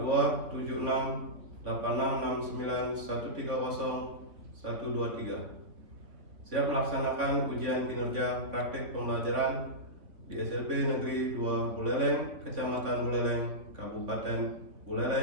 siap melaksanakan ujian kinerja praktik pembelajaran di SMP Negeri 2 Buleleng, Kecamatan Buleleng, Kabupaten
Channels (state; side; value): late; left; 3.5 ms